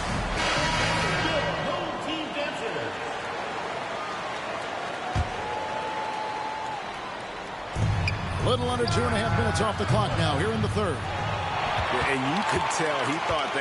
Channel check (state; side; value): identical; both; correlation 1.00